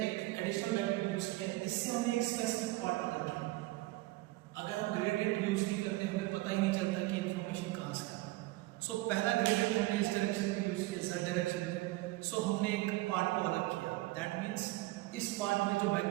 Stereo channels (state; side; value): quieter; left; 19.6 dB